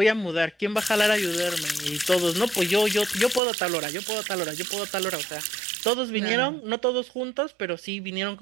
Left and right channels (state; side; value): drops out; left; at 3.4 s